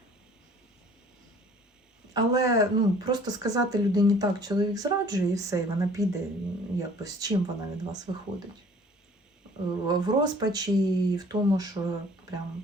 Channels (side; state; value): both; normal; correlation 0.52